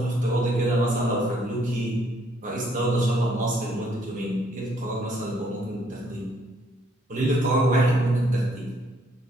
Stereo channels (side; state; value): both; normal; correlation 0.67